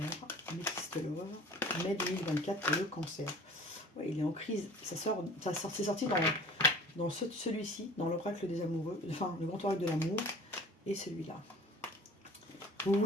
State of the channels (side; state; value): both; normal; correlation 0.46